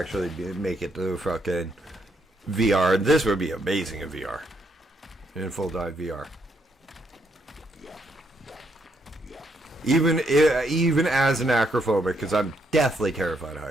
make it to fucking VR. This would be amazing in VR, in full dive VR. Even as an acrophobic, because I'm deathly terrified of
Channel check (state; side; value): normal; both; correlation 0.75